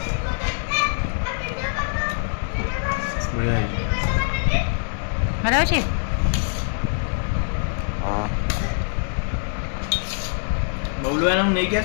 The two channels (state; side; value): silent; right; digital silence